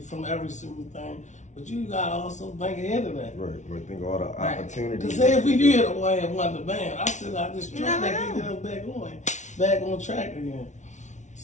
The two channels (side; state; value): right; late; 0.35 ms